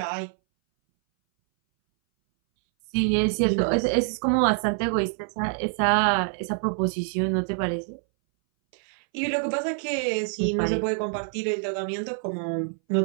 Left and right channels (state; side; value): silent; left; 60 dB below the other